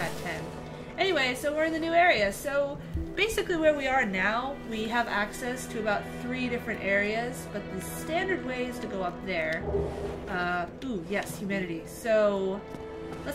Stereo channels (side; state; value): both; identical; correlation 1.00